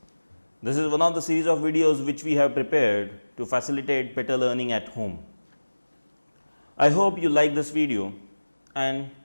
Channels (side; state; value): both; inverted; correlation -1.00